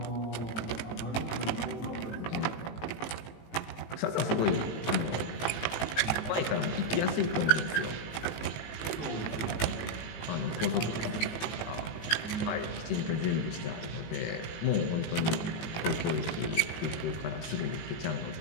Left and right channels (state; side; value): late; right; 18 ms